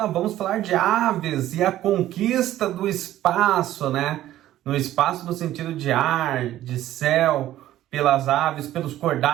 vamos falar de aves e a conquista do espaço, né? No espaço no sentido de ar, de céu, pelas aves, pelos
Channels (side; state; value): left; quieter; 13.6 dB